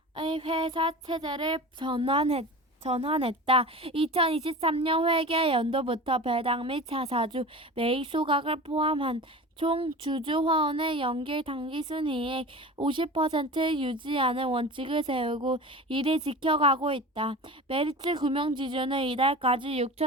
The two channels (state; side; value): normal; both; correlation 0.33